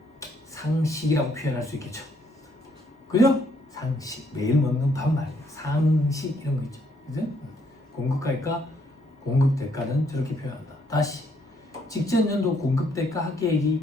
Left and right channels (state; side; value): normal; both; correlation 0.70